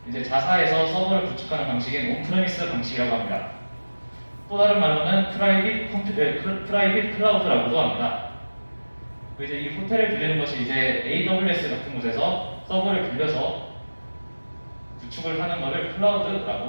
이제 자사에서 서버를 구축하는 방식인 온프레미스 방식이라고 합니다. 또 다른 말로는 프라이빗 클라우드라고도 합니다. 이제 이 호텔을 빌리는 것이 이제 AWS 같은 곳에서 서버를 빌려서 구축을 하는 것을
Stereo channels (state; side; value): inverted; both; correlation -1.00